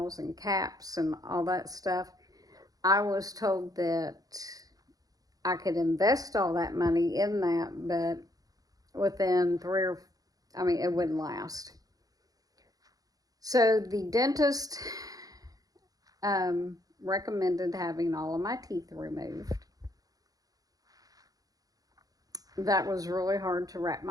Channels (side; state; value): left; late; 0.18 ms